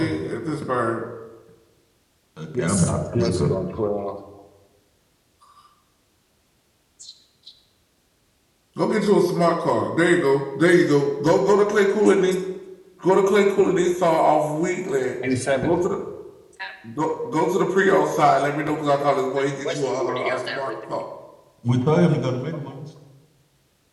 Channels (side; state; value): both; identical; correlation 1.00